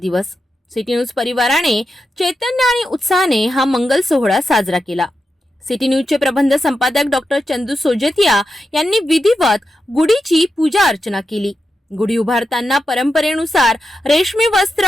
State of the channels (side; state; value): both; normal; correlation 0.88